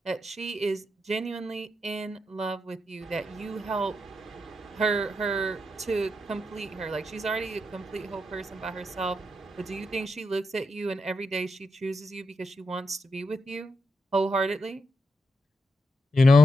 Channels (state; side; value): normal; both; correlation 0.84